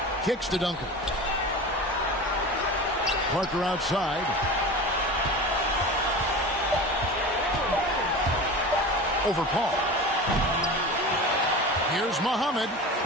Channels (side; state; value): both; normal; correlation 0.32